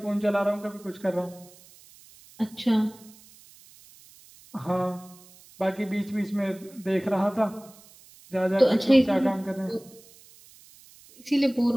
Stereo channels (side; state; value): right; noise; hiss, 24 dB below the sound